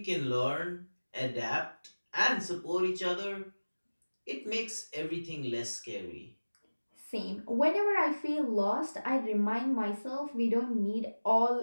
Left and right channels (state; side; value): inverted; both; correlation -1.00